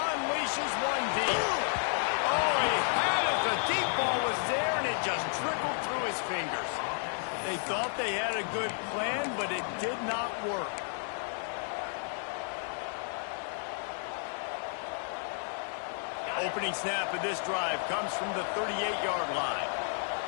one deep. Oh, he had it. The deep ball was there, and it just trickled through his fingers. They thought they had a good plan, but it did not work. Opening snap of this drive comes from the 38-yard line.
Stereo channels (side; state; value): right; silent; 56 dB below the other